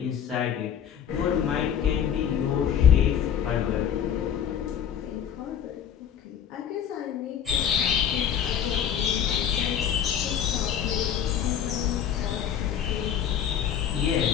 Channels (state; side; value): quieter; right; 9.0 dB